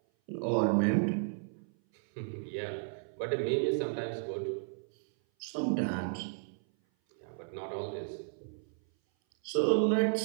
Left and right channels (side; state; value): left; silent; 56 dB below the other